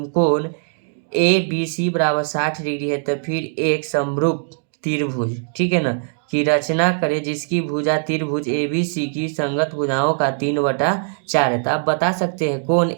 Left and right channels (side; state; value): left; silent; digital silence